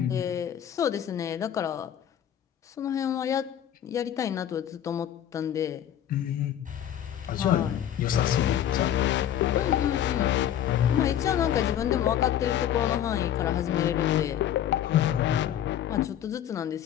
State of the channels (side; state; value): right; quieter; 10.6 dB